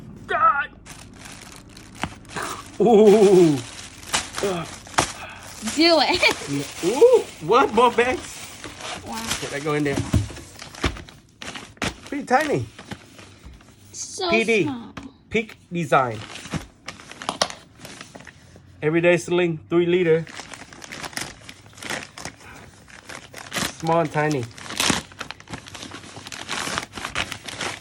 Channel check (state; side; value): identical; both; correlation 1.00